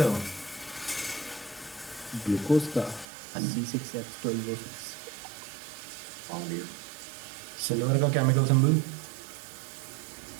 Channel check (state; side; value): drops out; left; at 3.1 s